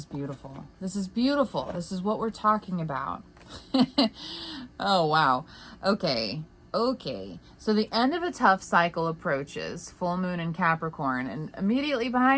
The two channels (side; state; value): both; identical; correlation 1.00